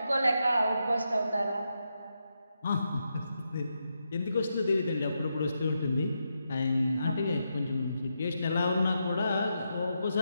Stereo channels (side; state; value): both; inverted; correlation -0.84